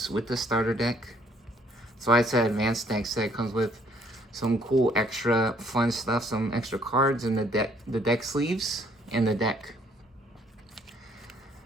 with the starter deck. That's why I said advanced deck set. Comes with some cool extra fun stuff, some extra cards in the deck sleeves and the deck.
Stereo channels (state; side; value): normal; both; correlation 0.63